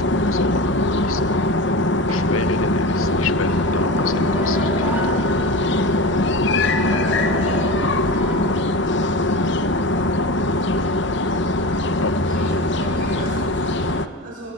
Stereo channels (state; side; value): normal; both; correlation 0.28